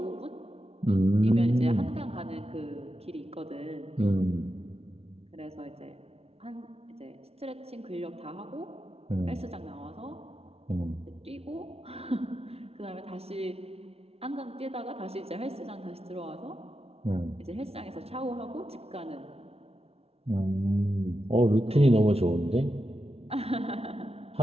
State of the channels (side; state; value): left; late; 0.30 ms